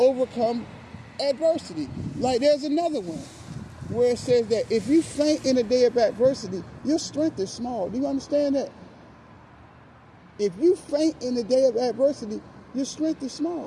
adversity. Like there's another one where it says that if you faint in a day of adversity, your strength is small. Do you understand that? If you faint in the day of adversity, your strength is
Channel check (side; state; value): both; identical; correlation 1.00